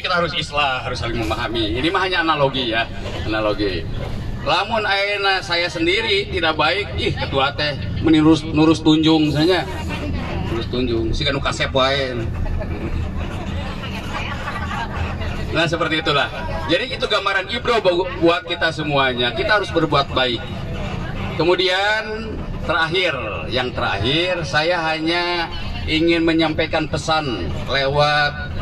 harus islah, harus saling memahami. Ini mah hanya analogi ya, analogi. Lamun ayeuna saya sendiri tidak baik, ketua teh menurus tunjung saja. Nurus tunjung, si kanu kasep wae. Nah, seperti itulah. Jadi itu gambaran ibro buat kita semuanya. Kita harus berbuat baik. Kemudian yang terakhir saya hanya ingin menyampaikan pesan lewat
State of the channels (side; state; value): both; identical; correlation 1.00